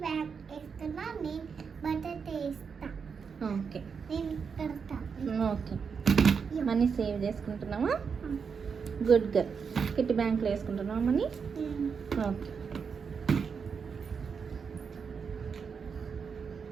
బ్యాగ్ వేస్తున్నా, నేను బటర్ వేస్తా. ఓకే నేను పెడతా. ఓకే, మనీ సేవ్ చేసుకుంటున్నావా? Good girl. కిట్టి బ్యాంక్లో వేసుకుంటున్నావా మనీ? ఓకే.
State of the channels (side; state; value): left; quieter; 6.0 dB